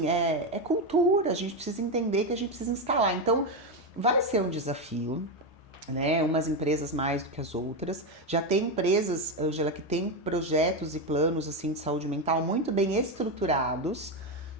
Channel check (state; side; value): normal; both; correlation 0.10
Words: é cultura, a gente precisa entender que a gente precisa instalar. Então, vai ser um desafio, né? Umas empresas mais do que as outras. Já tem empresas, Ângela, que tem projetos e planos assim de saúde mental muito bem estruturados,